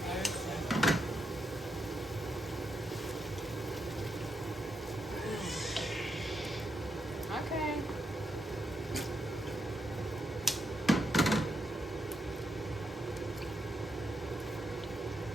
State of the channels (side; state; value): both; normal; correlation 0.81